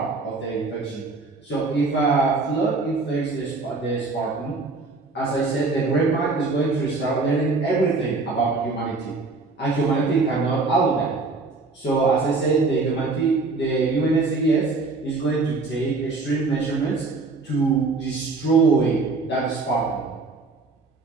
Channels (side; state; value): left; quieter; 3.8 dB